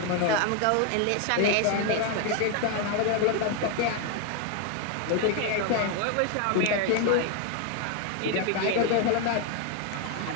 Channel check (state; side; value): different; both; correlation 0.01